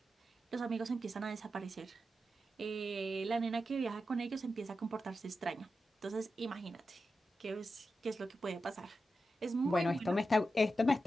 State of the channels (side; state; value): both; normal; correlation 0.90